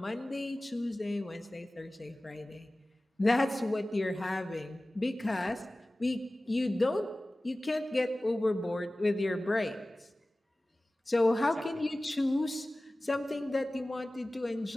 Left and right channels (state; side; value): normal; both; correlation 0.97